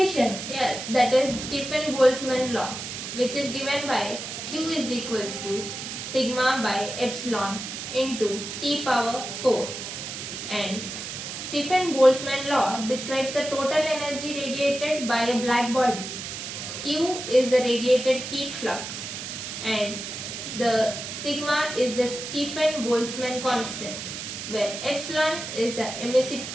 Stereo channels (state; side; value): noise; right; hiss, 7 dB below the sound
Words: Yes, that is Stefan-Boltzmann law, which is given by Q is equals to sigma by epsilon into T power 4. And Stefan-Boltzmann law describes the total energy radiated by a black body. Q is the radiated heat flux, and the sigma is the Stefan-Boltzmann constant, where epsilon is the